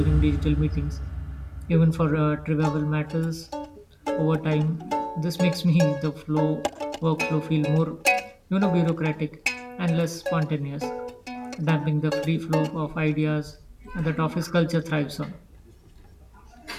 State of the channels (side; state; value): both; identical; correlation 1.00